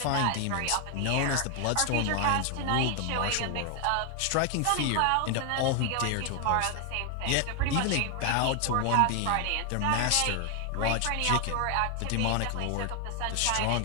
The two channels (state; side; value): different; both; correlation 0.01